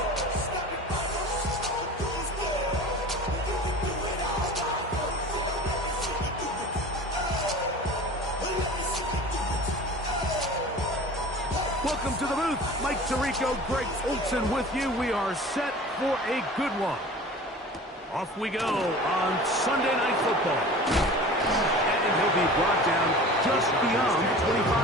Welcome to the booth. Mike Tirico, Greg Olson with you. We are set for a good one. Off we go on Sunday Night Football. And he'll be brought down just beyond the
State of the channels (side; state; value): both; normal; correlation 0.39